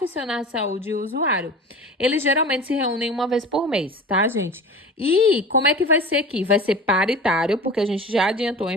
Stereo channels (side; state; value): both; normal; correlation 0.35